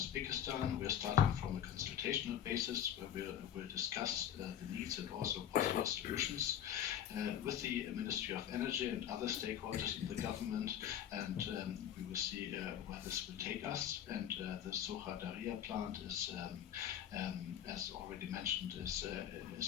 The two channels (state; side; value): quieter; right; 10.0 dB